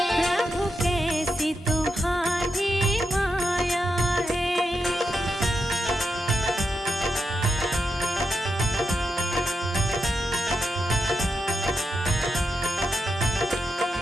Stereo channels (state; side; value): normal; both; correlation 0.85